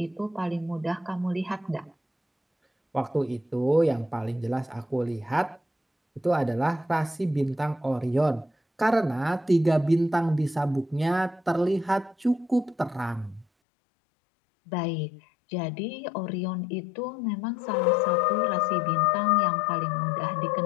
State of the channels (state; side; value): drops out; right; at 13.5 s